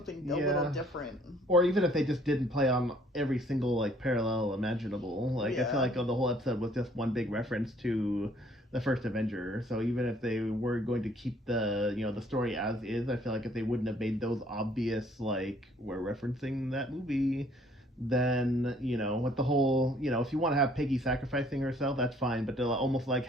a little different. Or even if they just didn't play on every single like parallel imaginable. Like I feel like the whole episode was just one big reference to the first Avenger. So even if they were going to keep the the story as is, I feel like if they wouldn't have made those obvious like we're referencing that movie, then with the whole if you want to have Peggy sacrificing herself, that's fine, but they'll almost like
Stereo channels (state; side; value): normal; both; correlation 0.61